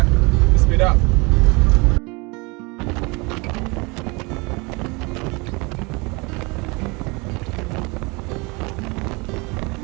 You speed up.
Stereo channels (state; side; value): quieter; left; 27.3 dB